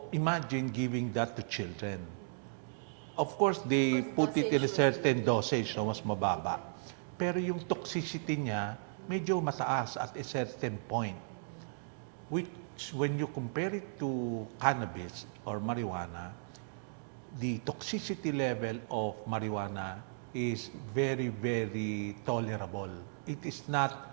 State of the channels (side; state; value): left; silent; digital silence